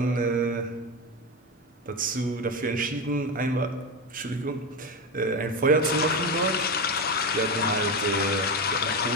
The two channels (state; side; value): normal; both; correlation 0.16